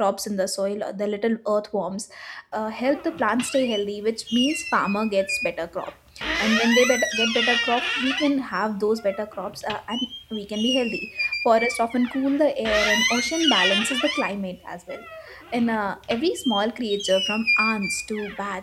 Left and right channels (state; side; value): identical; both; correlation 1.00